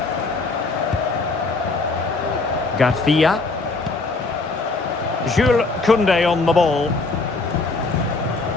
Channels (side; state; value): right; quieter; 3.7 dB